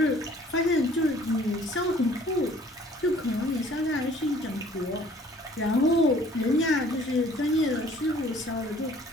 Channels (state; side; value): normal; both; correlation 0.56